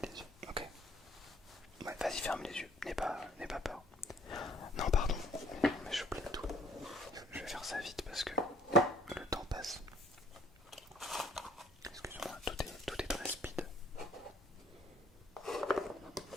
les yeux, ok? Ouais, vas-y, ferme les yeux, n'aie pas peur. Non, pardon, mais j'oublie tout. Je vais faire ça vite parce que le temps passe. Excuse-moi, tout est très speed.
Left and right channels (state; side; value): normal; both; correlation 0.59